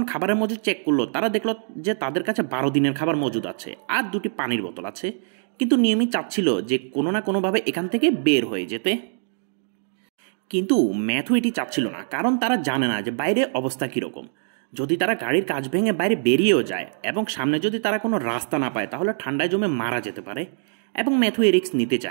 খাবারের মজুদ চেক করলো, তারা দেখলো যে তাদের কাছে ১২ দিনের খাবার মজুদ আছে, আর ২টি পানির বোতল আছে। কিন্তু নিয়মিত চাচ্ছিল যে কোনো না কোনোভাবে এখান থেকে বের হয়ে যেতে। কিন্তু ম্যাথু এটি চাচ্ছিল না, কারণ তারা জানে না যে বাইরে অবস্থা কীরকম। যদি তারা গাড়ির কাঁচ ভেঙে বাইরে বেরিয়েও যায় এবং সামনে যদি তারা কোনো রাস্তা না পায়, তাহলে ঠান্ডায় জমে মারা যেতে পারে। এবং ম্যাথু এ রিস্ক নিতে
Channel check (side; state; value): left; silent; digital silence